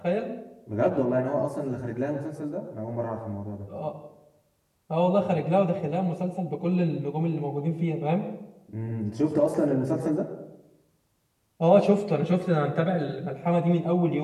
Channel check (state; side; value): identical; both; correlation 1.00